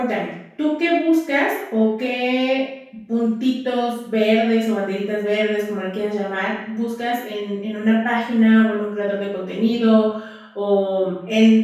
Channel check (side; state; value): both; identical; correlation 1.00